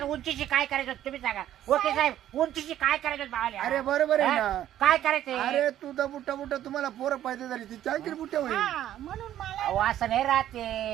उंचीची काय करायचं तुम्ही सांगा. ओके साहेब उंचीची काय करायचं भावले. अरे बरोबर आहे ना. काय करायचं. अरे तू तर बुट्टा बुट्टा तुम्हाला पोरं पाहिजे झाली ती चांगली बुट्ट्या होईल. हा म्हणून मला अहो असं नाही राहते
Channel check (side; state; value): left; quieter; 12.0 dB